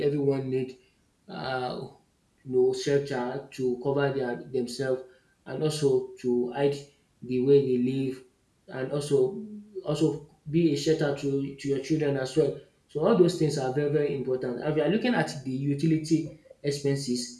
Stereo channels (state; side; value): identical; both; correlation 1.00